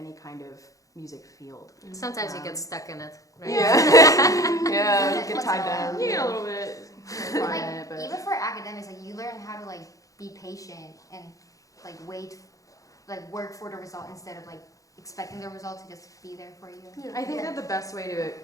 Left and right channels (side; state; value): right; late; 0.16 ms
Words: kind of music field. Sometimes you get stuck in it, right? Yeah. Yeah, get What's tied wrong? down. You get a little bit. Like, even for academics, like you learn how to like be patient and like wait, like work for the result instead of like expecting the result to just be there for you. I think that the best way to